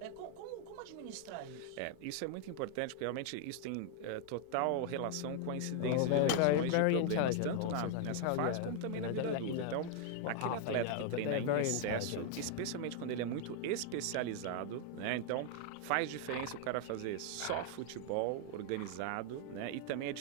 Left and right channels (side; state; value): both; different; correlation 0.00